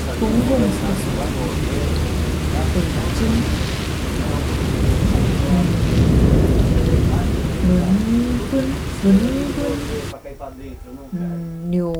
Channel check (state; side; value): identical; both; correlation 1.00